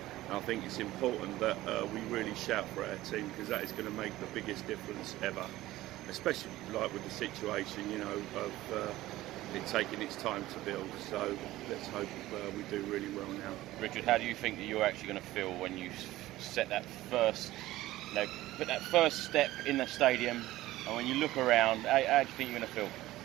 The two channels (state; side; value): quieter; left; 16.4 dB